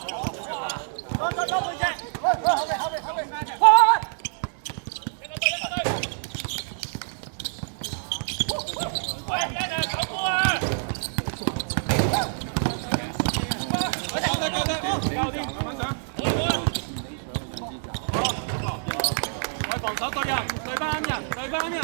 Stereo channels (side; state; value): left; silent; digital silence